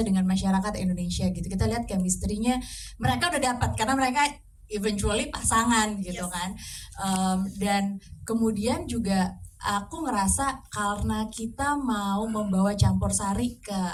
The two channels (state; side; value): identical; both; correlation 1.00